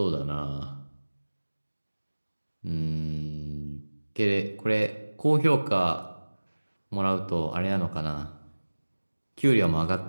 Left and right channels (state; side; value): inverted; both; correlation -1.00